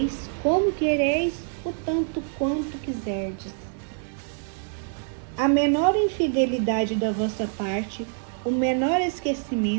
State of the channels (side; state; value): left; silent; digital silence